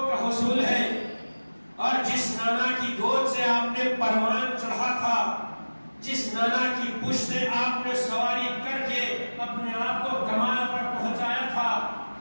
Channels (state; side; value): inverted; both; correlation -1.00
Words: کا حصول ہے اور جس نانا کی گود سے آپ نے پروان چڑھا تھا، جس نانا کی پشت سے آپ نے سواری کر کے اپنے آپ کو کمال پر پہنچایا تھا،